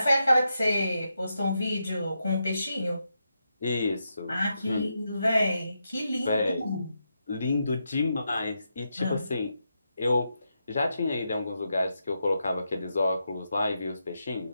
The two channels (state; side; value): inverted; both; correlation -0.85